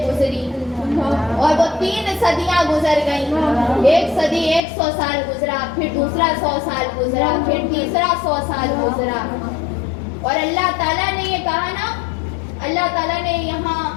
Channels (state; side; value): drops out; right; at 4.6 s